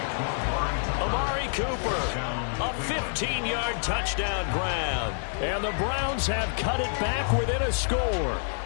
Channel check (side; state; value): right; silent; digital silence